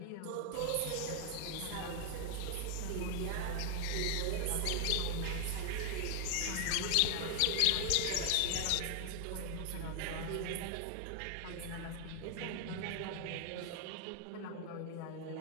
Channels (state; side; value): different; both; correlation 0.00